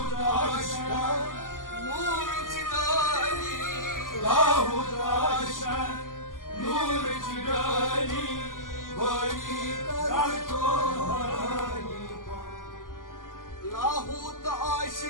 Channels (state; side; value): late; right; 0.89 ms